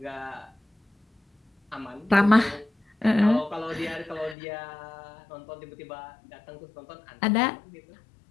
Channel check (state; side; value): drops out; right; at 4.4 s